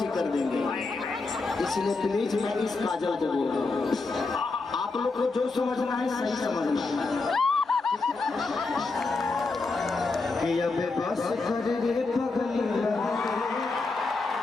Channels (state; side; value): quieter; right; 3.8 dB